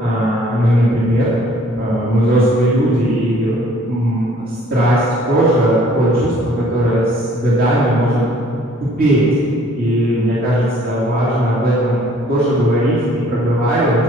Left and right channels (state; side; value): normal; both; correlation 0.57